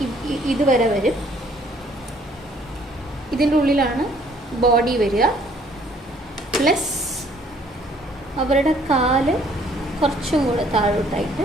ഇതുവരെ വരും. ഇതിൻ്റെ ഉള്ളിലാണ് ബോഡി വരിക. പ്ലസ് അവരുടെ കാല് കുറച്ചും കൂടെ താഴോട്ടായിട്ട്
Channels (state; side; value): normal; both; correlation 0.61